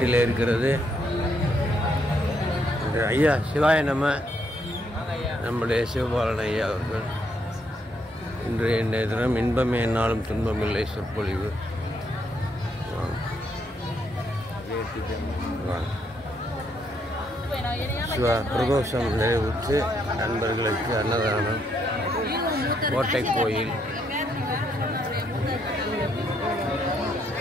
இருக்கிறது. ஐயா சிவாய நம்முடைய சிவபாலன் ஐயா அவர்கள் இன்றைய தினம் இன்பமே என்னாலும் துன்பமில்லை சொற்பொழிவு. பிரதோஷம் நிறைவுற்று நண்பர்களுக்கு அன்னதானம் கோட்டை கோயில்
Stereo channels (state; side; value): normal; both; correlation 0.74